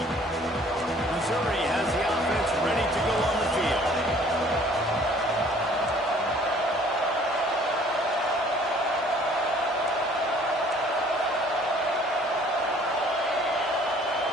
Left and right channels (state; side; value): normal; both; correlation 0.56